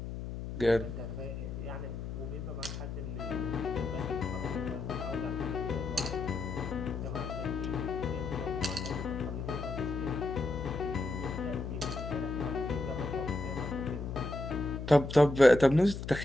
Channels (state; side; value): noise; left; hum, 6 dB below the sound